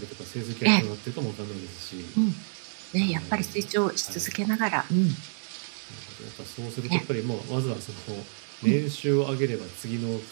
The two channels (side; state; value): left; silent; digital silence